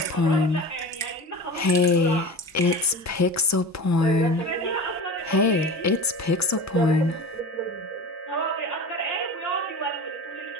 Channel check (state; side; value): normal; both; correlation 0.33